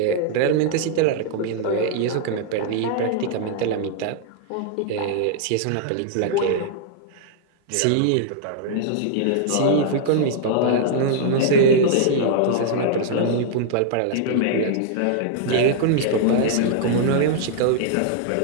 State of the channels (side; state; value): both; different; correlation -0.01